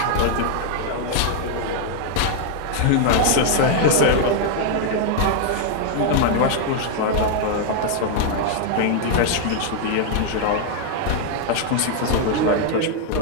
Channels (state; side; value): different; both; correlation -0.01